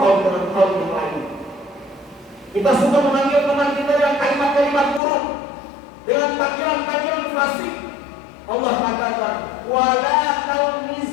dengan kaum yang lain. Kita suka memanggil teman kita dengan kalimat-kalimat buruk, dengan panggilan-panggilan fasik. Allah katakan, wala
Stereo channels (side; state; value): right; drops out; at 5.0 s